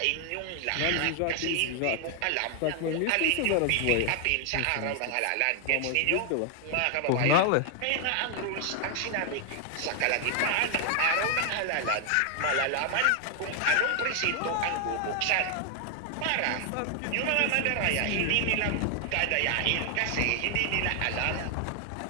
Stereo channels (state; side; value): different; both; correlation 0.00